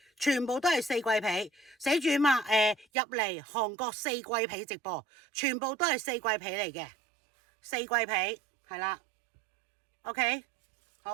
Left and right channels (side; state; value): left; drops out; at 2.9 s